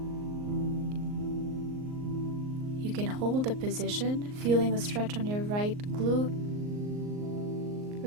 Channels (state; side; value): late; left; 38 ms